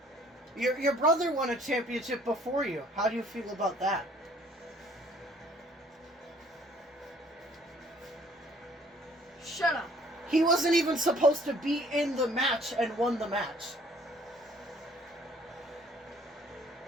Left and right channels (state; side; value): normal; both; correlation 0.58